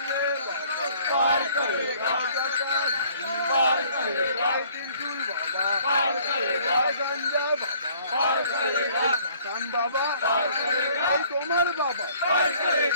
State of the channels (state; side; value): inverted; both; correlation -0.58